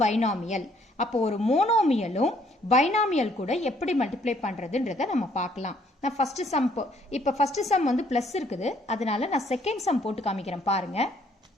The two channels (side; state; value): both; normal; correlation 0.65